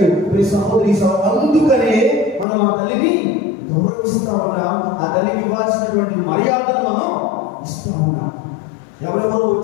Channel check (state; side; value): drops out; right; at 2.5 s